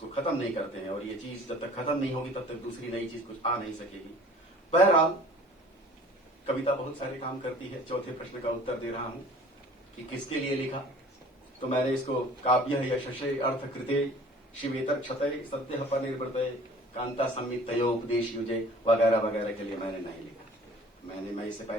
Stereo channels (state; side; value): normal; both; correlation 0.48